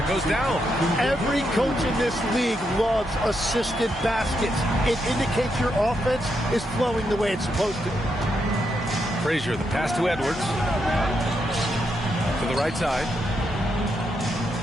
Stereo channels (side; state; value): both; normal; correlation 0.81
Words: goes down. Every coach in this league loves assisted baskets. It indicates your offense is flowing the way it's supposed to. Frazier, the pass to Edwards. To the right side.